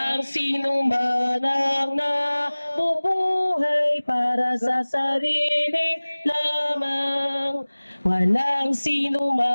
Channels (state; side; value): inverted; both; correlation -1.00